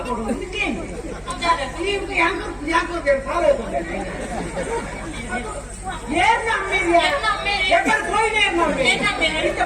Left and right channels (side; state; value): both; identical; correlation 1.00